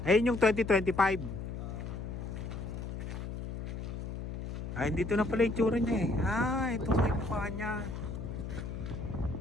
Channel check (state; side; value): noise; left; hum, 6 dB below the sound